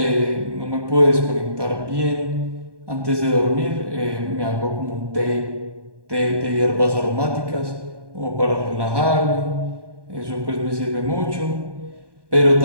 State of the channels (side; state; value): left; late; 1.2 ms